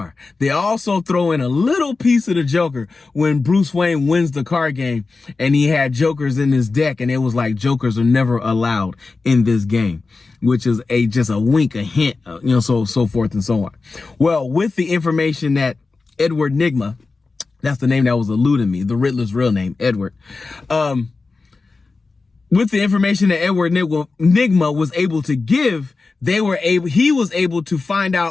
They also throw in a little piece of the Joker when Bruce Wayne wins the card game and he had Jokers in his deck, and it was like Jokers are never allowed in this game, which is just a wink, a hint, so forth and so on. Well, with the information that Edward Nygma, that's the name that was eluding me, the Riddler's real name, Edward, with the information that Edward Nygma was able to give, he was able to find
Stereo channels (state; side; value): quieter; right; 4.0 dB